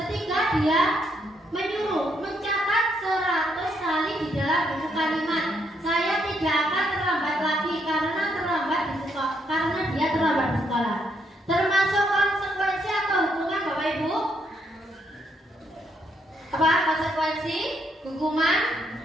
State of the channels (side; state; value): both; normal; correlation 0.74